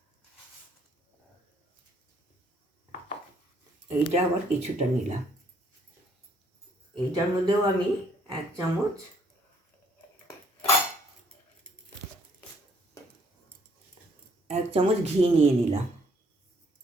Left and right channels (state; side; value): normal; both; correlation 0.65